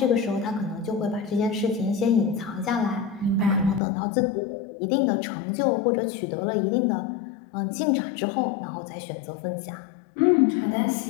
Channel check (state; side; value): drops out; right; at 3.8 s